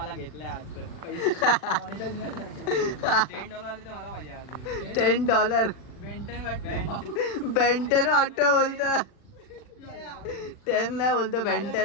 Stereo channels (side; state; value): right; late; 39 ms